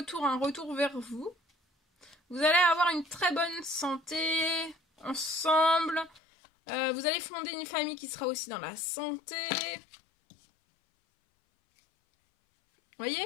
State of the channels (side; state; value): right; drops out; at 6.2 s